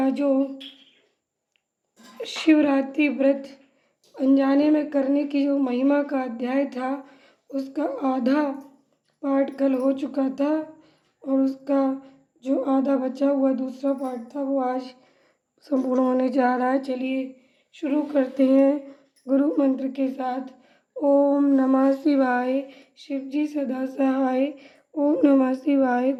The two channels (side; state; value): both; identical; correlation 1.00